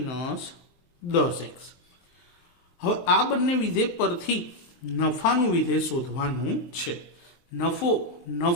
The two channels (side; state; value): right; late; 23 ms